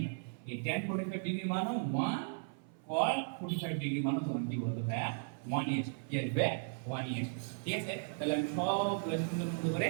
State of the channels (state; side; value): silent; left; 54 dB below the other